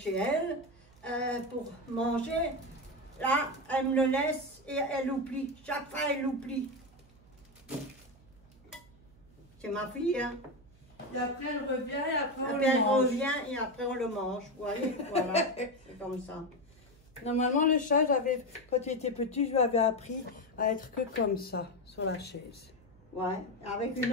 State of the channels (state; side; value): noise; right; hum, 27 dB below the sound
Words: elle, pour manger. Là, elle me le laisse et elle oublie. Chaque fois, elle oublie. C'est ma fille, hein. Et après, elle revient et après, on Après, le elle mange. revient et après, on le mange. Vous voyez, voilà. C'est comme ça. Normalement, le chat, quand il était petit, je lui avais appris à être que comme ça, sur la chaise. Ouais, avec